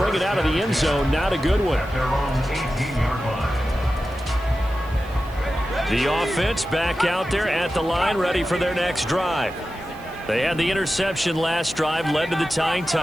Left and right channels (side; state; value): right; noise; hiss, 25 dB below the sound